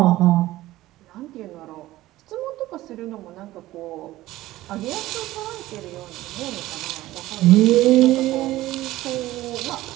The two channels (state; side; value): quieter; left; 16.3 dB